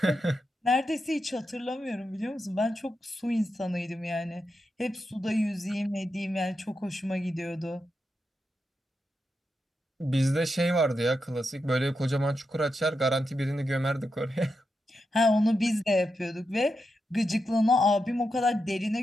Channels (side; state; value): both; normal; correlation 0.87